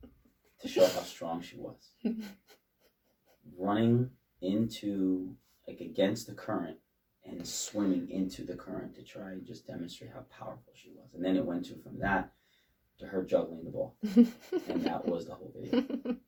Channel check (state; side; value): identical; both; correlation 1.00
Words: to show how strong she was. Running against the current and swimming into the current to try and just demonstrate how powerful she was. And then it went from that to her juggling the ball. And that was the whole video.